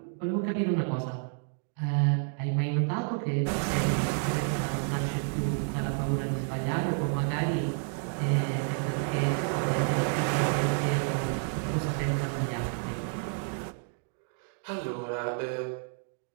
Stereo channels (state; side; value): silent; left; 58 dB below the other